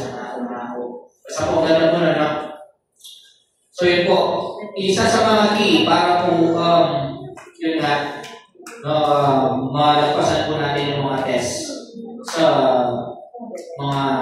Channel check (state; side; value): identical; both; correlation 1.00